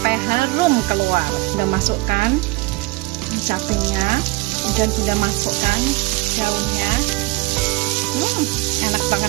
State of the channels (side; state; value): left; quieter; 23.1 dB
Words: harum keluar. Bunda masukkan capenya, kemudian Bunda masukkan daunnya. Enak